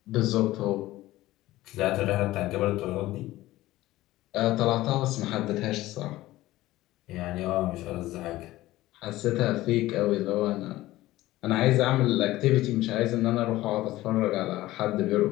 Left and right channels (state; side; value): quieter; right; 16.8 dB